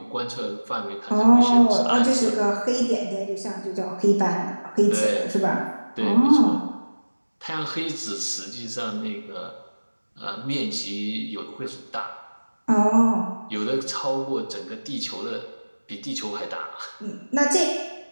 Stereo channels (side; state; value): both; inverted; correlation -1.00